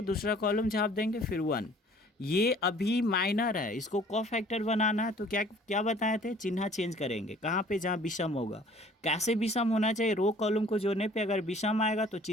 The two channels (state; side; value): normal; both; correlation 0.53